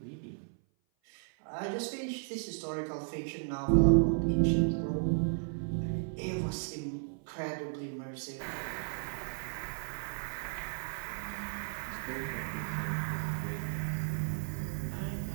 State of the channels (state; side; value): silent; left; 55 dB below the other